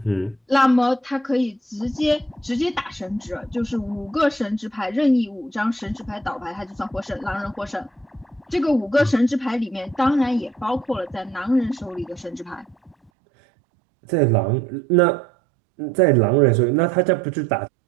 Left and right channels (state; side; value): drops out; left; at 13.1 s